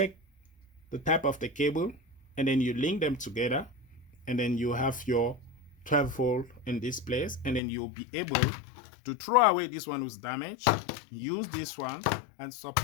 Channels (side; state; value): right; drops out; at 7.6 s